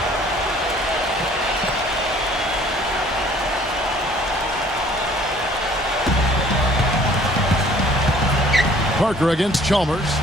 Parker against Chalmers.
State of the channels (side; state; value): both; normal; correlation 0.55